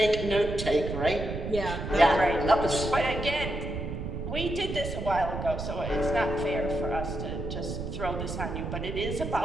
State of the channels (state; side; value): noise; right; rumble, 5 dB below the sound